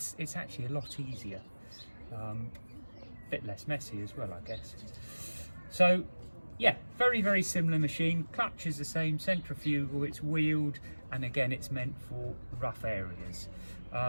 actually a lot easier, bit less messy as well, I guess. So yeah, very similar machine. Clutch is the same, centrifugal, it's wheeled, and again it's meant for rough areas.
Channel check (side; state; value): both; inverted; correlation -1.00